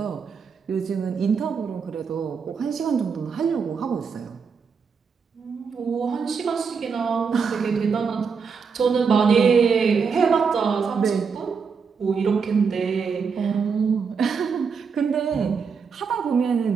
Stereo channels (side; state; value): left; quieter; 5.8 dB